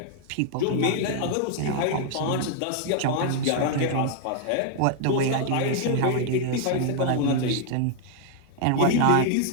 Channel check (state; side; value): different; both; correlation 0.00